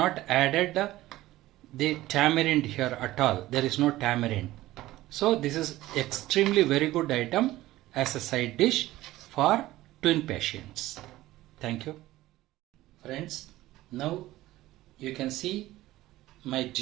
added the tamarind here at all. There is no tamarind. So this is extremely very good item as a side dish for twin patients. Thank you. Friends, now you can see my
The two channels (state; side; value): quieter; left; 16.4 dB